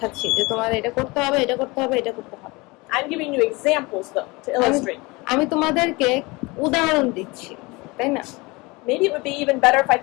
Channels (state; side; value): quieter; right; 24.5 dB